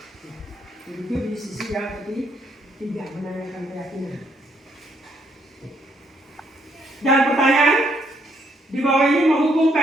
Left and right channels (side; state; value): both; normal; correlation 0.71